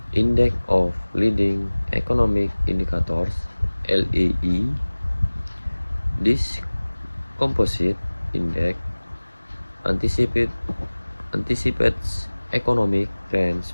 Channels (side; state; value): both; inverted; correlation -1.00